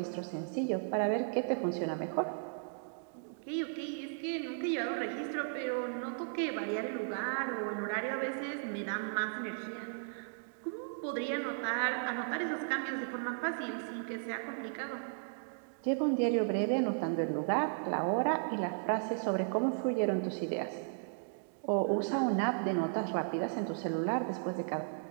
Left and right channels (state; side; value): silent; left; digital silence